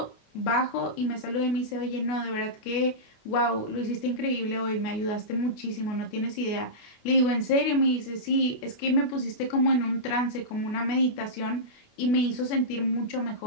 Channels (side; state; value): right; late; 28 ms